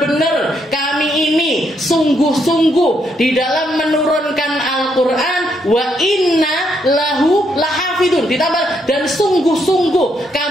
kami ini sungguh-sungguh di dalam menurunkan Al-Quran, wa inna lahu lahafidun, ditambah dan sungguh-sungguh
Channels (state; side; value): normal; both; correlation 0.75